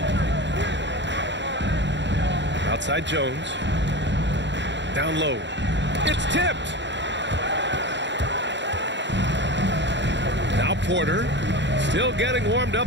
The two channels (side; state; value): left; late; 0.52 ms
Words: Outside Jones. Down low. It's tipped. Now Porter. Still getting warmed up